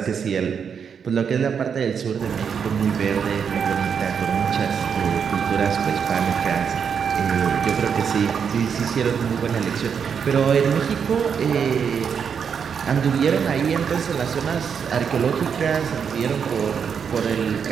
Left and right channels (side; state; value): left; quieter; 7.0 dB